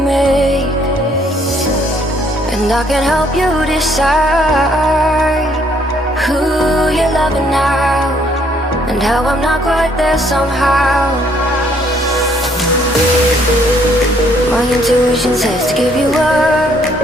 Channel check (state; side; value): normal; both; correlation 0.66